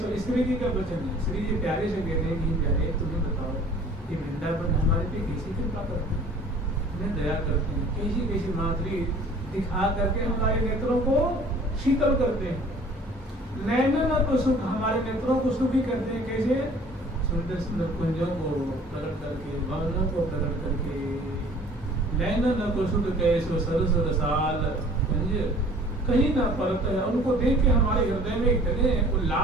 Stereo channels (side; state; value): both; normal; correlation 0.51